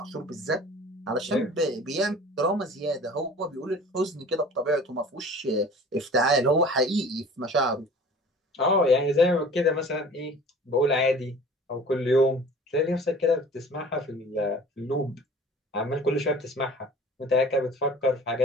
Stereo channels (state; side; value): normal; both; correlation 0.45